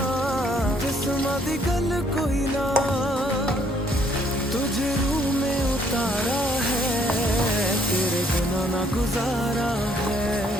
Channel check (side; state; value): both; normal; correlation 0.66